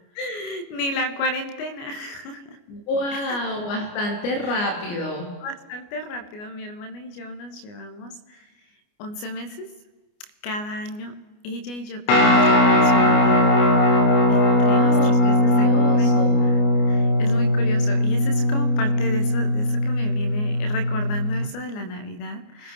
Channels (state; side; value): late; right; 29 ms